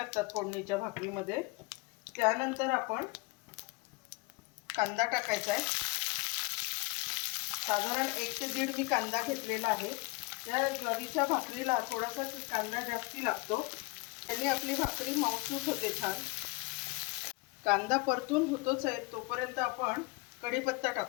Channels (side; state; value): right; quieter; 25.2 dB